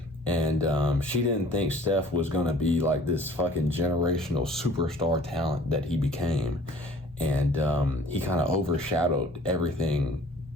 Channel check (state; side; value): normal; both; correlation 0.51